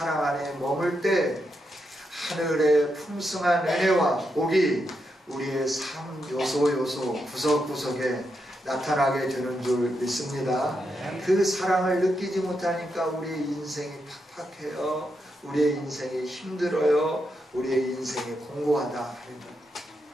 안에 머물 때 하늘의 풍성한 은혜와 복이 우리의 삶 요소 구석구석에 나타나게 되는 줄 믿습니다. 그 사랑을 느끼지 못하니까 우리의 인생이 팍팍해요. 우리의 인생이 힘들어요. 우리의 인생이 공고하다 하는 것.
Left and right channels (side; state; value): both; normal; correlation 0.83